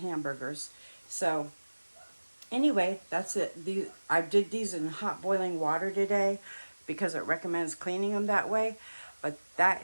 So anyway, that's it. I did these in hot boiling water today because it recommends cleaning them that way. But that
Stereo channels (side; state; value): both; inverted; correlation -1.00